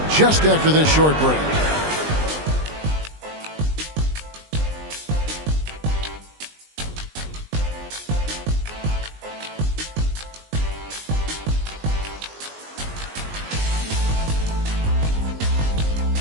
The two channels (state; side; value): late; left; 20 ms